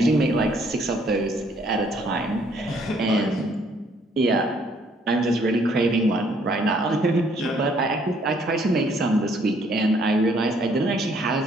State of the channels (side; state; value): both; normal; correlation 0.65